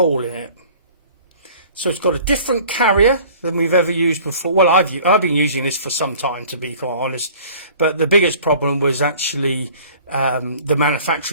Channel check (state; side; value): inverted; both; correlation -0.48